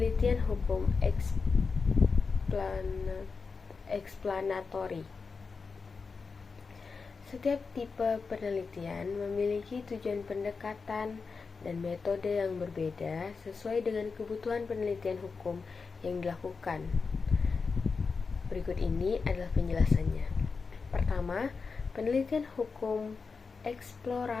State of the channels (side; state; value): right; quieter; 4.8 dB